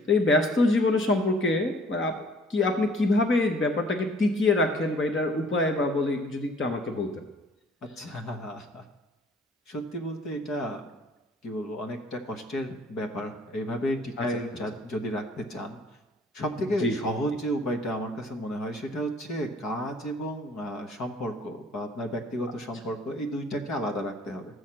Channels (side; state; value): both; normal; correlation 0.56